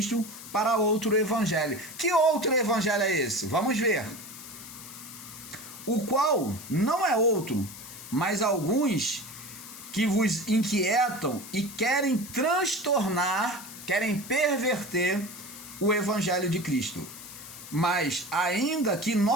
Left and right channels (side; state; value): left; noise; hiss, 14 dB below the sound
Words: para outro evangelho. Que outro evangelho é esse? Vamos ver. O qual não é outro, mas alguns que vos inquietam e querem transtornar, querem perverter o evangelho de Cristo. Mas ainda que